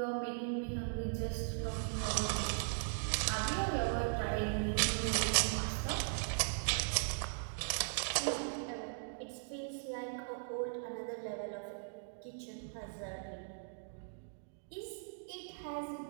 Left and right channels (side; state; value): left; silent; digital silence